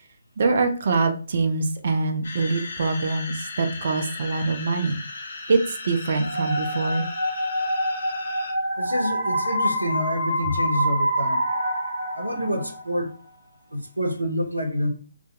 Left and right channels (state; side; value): inverted; both; correlation -0.80